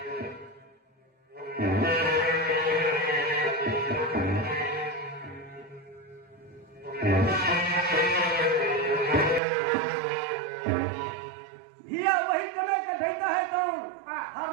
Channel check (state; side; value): drops out; left; at 9.4 s